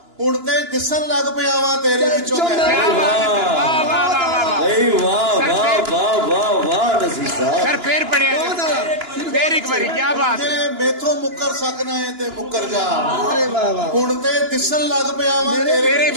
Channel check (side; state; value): left; late; 2.9 ms